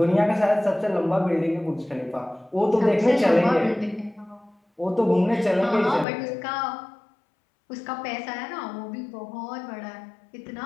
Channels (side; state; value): right; drops out; at 6.1 s